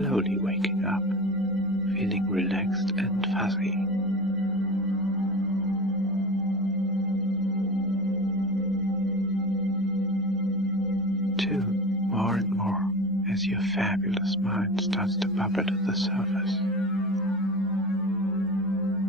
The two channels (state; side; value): normal; both; correlation 0.30